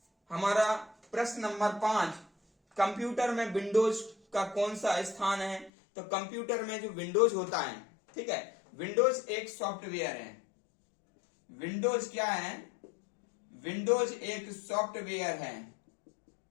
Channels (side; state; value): right; drops out; at 5.7 s